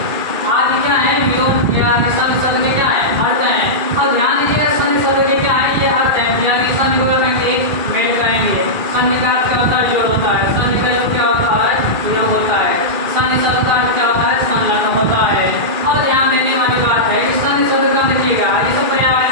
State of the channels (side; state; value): left; late; 2.4 ms